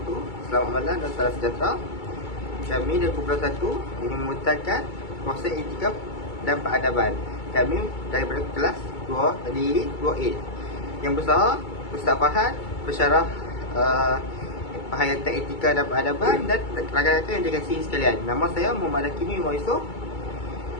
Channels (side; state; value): right; late; 2.3 ms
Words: Selamat malam dan salam sejahtera. Kami dari Kumpulan 1 ingin memutakan konsep etika dan peradaban. Kami daripada kelas 2 tadi 2A. Yang besar Ustaz Fahad pensyarah penghayatan etika dan peradaban, dan rakan-rakan yang dikasihi sekalian. Nama saya Muhammad Hakimi Yusof.